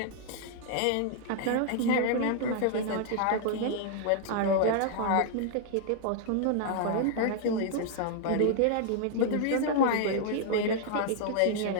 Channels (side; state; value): both; different; correlation 0.00